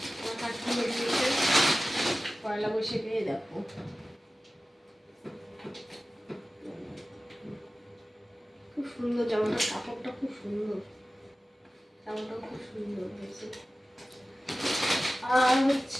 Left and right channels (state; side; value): normal; both; correlation 0.96